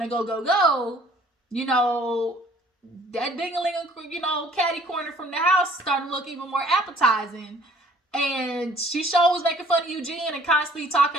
to go, you know, that ding-a-ling, you know, catty corner from the house starting to look even more appetizing. And she sure was making fun of Eugene and constantly talking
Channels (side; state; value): both; normal; correlation 0.56